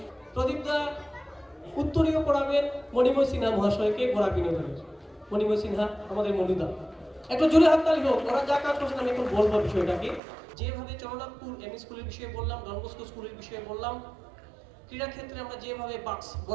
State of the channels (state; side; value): drops out; left; at 10.2 s